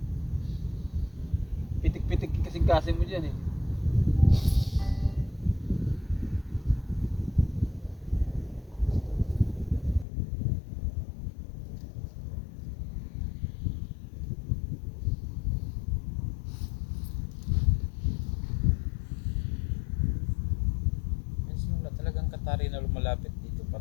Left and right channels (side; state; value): right; drops out; at 10.1 s